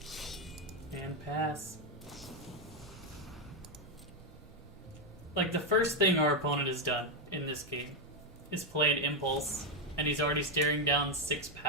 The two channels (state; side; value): normal; both; correlation 0.05